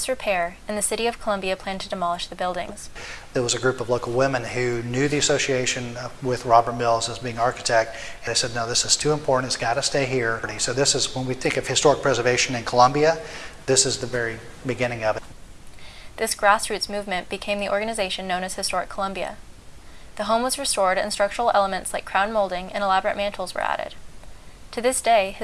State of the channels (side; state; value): both; identical; correlation 1.00